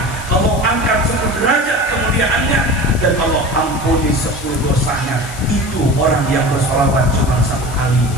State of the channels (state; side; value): noise; left; hiss, 15 dB below the sound